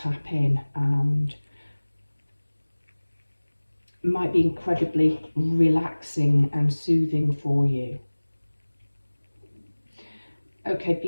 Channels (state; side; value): inverted; both; correlation -1.00